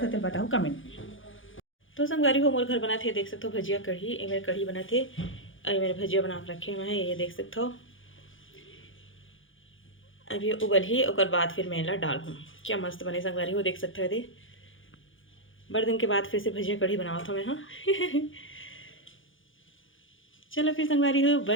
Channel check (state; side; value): late; right; 0.57 ms